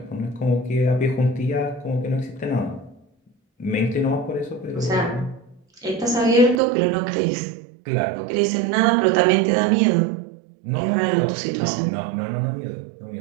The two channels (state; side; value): drops out; left; at 6.6 s